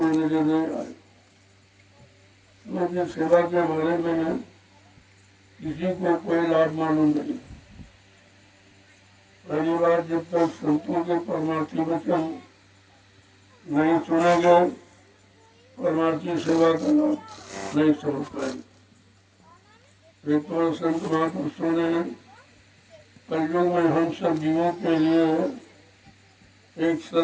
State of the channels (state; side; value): identical; both; correlation 1.00